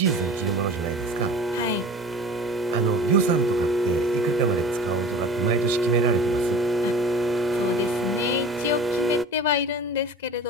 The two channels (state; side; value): normal; both; correlation 0.39